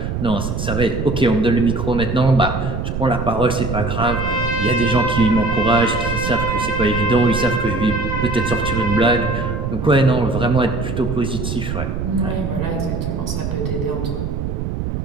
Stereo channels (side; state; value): right; noise; rumble, 3 dB below the sound